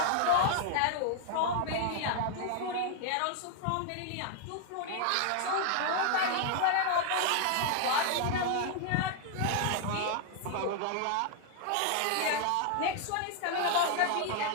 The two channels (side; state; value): both; different; correlation 0.00